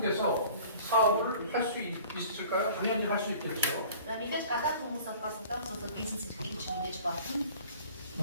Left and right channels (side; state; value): both; inverted; correlation -0.47